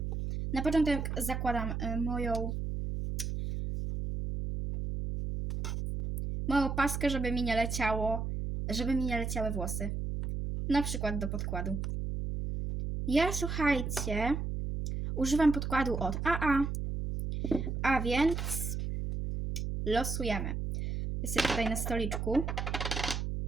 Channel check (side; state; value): right; noise; hum, 2 dB below the sound